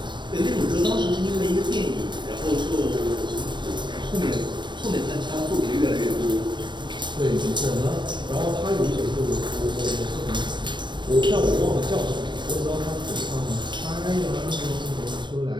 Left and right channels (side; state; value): left; late; 0.22 ms